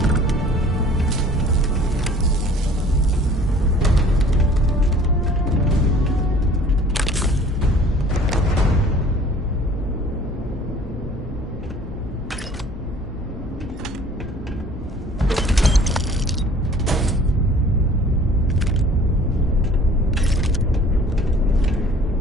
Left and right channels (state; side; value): normal; both; correlation 0.51